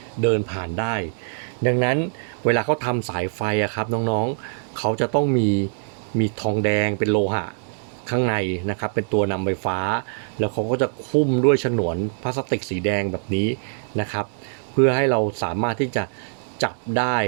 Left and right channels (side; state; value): left; silent; digital silence